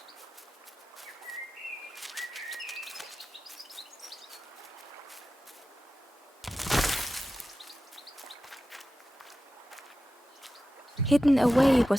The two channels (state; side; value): normal; both; correlation 0.93